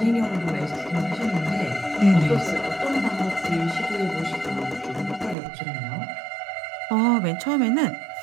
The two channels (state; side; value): drops out; left; at 5.4 s